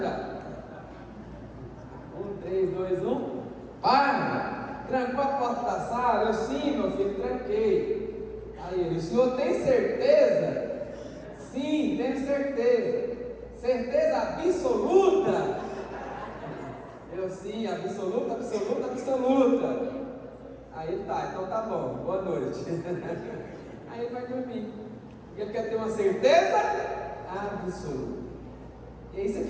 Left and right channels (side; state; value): both; identical; correlation 1.00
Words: já. 1, 3, 2, 1. Pai, trancou a porta da sala? Eu: sim, meu filho, tranquei. Aí ele: o senhor tem certeza? Sim, tenho certeza. Certeza absoluta? Eu: sim, absoluta. Aí ele: tá, então tá bom, boa noite. Aí ele vai dormir, porque ele quer ter uma certeza absoluta. E é isso